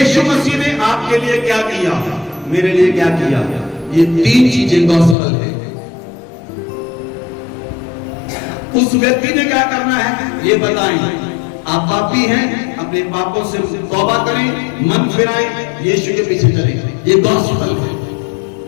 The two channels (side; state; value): right; drops out; at 5.2 s